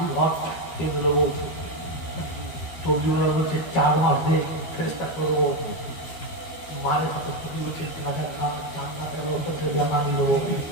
ঘর এগুলো বলছে, তবলিগরা বলছে 4 মাস দিয়ে ফেরেশতা করবো, মারে হাতে খুবই উঠে গাঁজা খাওয়া চান্নাতে নামি দেবো।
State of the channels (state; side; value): late; right; 13 ms